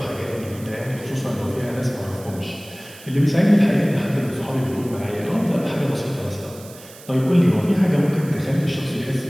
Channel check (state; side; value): noise; right; hiss, 19 dB below the sound